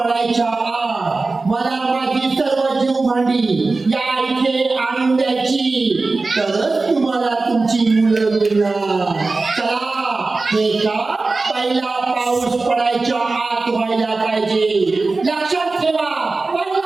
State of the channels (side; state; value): left; quieter; 3.6 dB